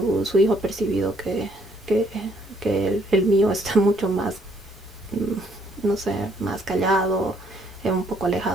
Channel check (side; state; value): both; normal; correlation 0.67